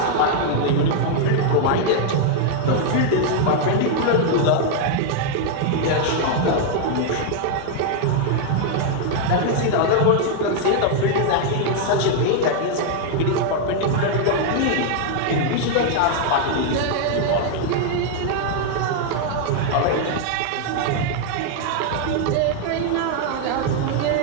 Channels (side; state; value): both; different; correlation 0.00